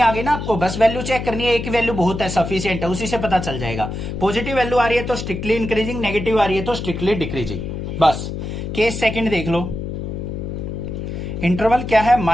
आ गई ना आपको, बस वैल्यू चेक करनी है, एक वैल्यू बहुत है, सफिशिएंट है, उसी से पता चल जाएगा। पॉजिटिव वैल्यू आ रही है तो स्ट्रिक्टली इंक्रीजिंग, नेगेटिव आ रही है तो स्ट्रिक्टली डिक्रीजिंग। बस केस सेकंड देख लो। इंटरवल क्या है,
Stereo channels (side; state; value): left; noise; hum, 6 dB below the sound